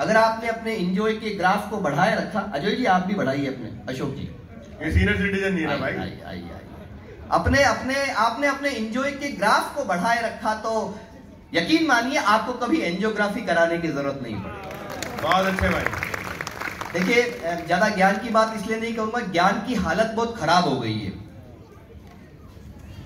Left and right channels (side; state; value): both; identical; correlation 1.00